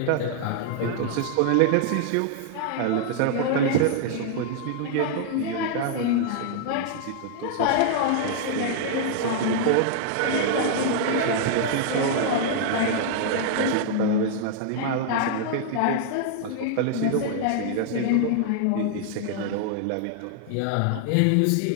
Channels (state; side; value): different; both; correlation -0.01